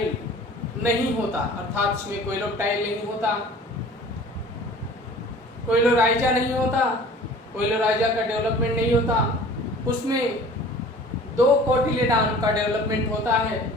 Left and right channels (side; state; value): both; normal; correlation 0.46